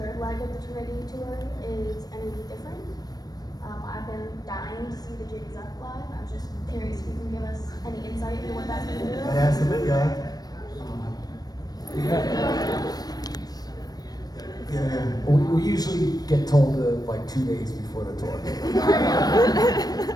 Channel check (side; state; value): right; late; 0.19 ms